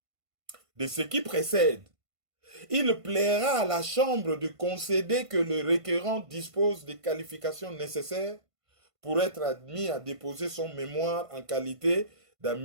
De ce qui précède, il plaira à la Chambre de concéder que le requérant dispose des qualifications nécessaires pour être admis à déposer son mémoire en qualité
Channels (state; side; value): late; left; 1.5 ms